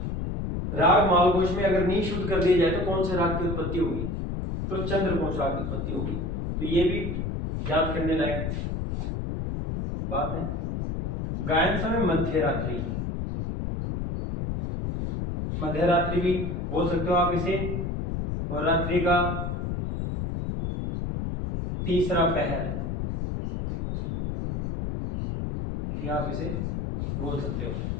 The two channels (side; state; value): left; noise; rumble, 3 dB below the sound